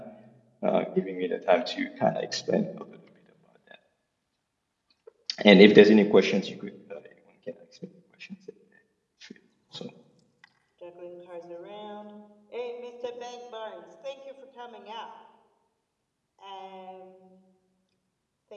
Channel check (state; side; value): identical; both; correlation 1.00